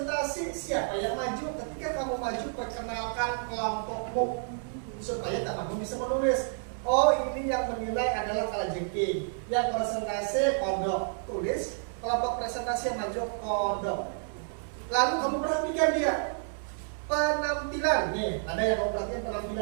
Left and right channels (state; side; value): silent; left; digital silence